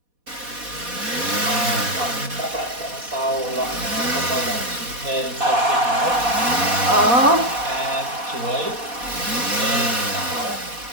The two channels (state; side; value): late; left; 4.1 ms